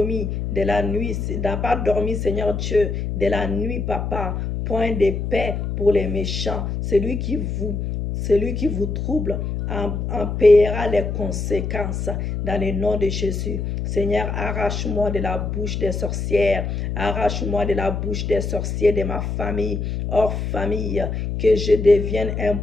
de la nuit, n'a pas dormi, Seigneur Dieu, de la nuit, papa. Point de paix pour les méchants. Celui qui vous trouble en paiera les conséquences dans le nom de Jésus. Seigneur, arrache-moi de la bouche des sorcières, arrache-moi de la bouche des sorciers de ma famille, hors famille, que je devienne un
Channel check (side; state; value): left; noise; hum, 3 dB below the sound